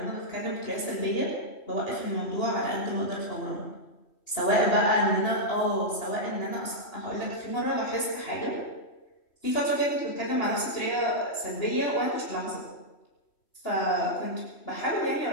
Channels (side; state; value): right; late; 3.1 ms